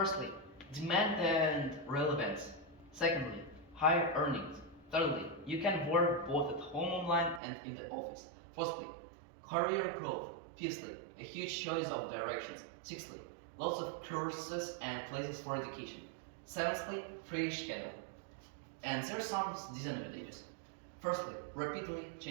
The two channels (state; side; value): drops out; left; at 7.4 s